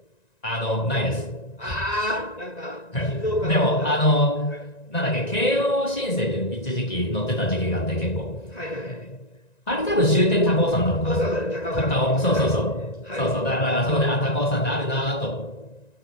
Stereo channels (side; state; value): right; late; 1.9 ms